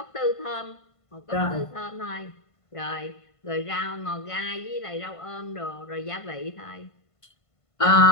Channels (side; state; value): right; late; 1.5 ms